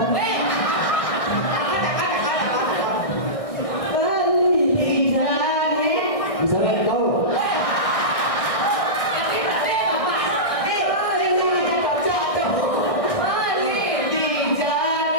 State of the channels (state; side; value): late; right; 1.6 ms